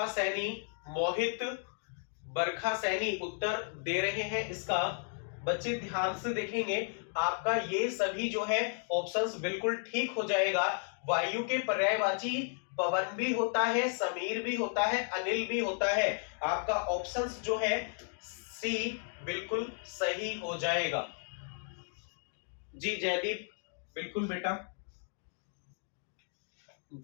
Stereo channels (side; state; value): right; silent; 55 dB below the other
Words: सैनी, मोहित, बरखा सैनी उत्तर दे रहे हैं इसका। बच्चे ध्यान से देखेंगे, आपका ये सभी जो है ऑप्शंस बिल्कुल ठीक हो जाएगा। वायु के पर्यायवाची पवन भी होता है, समीर भी होता है, अनिल भी होता है। आपका ऑप्शंस जो है सी बिल्कुल सही हो जाएगा। जी जयदीप, बिल्कुल बेटा,